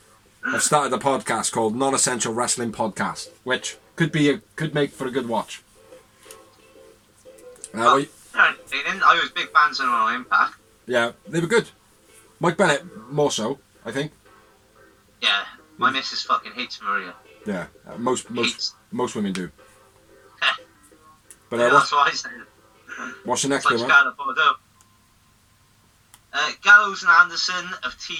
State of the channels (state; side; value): identical; both; correlation 1.00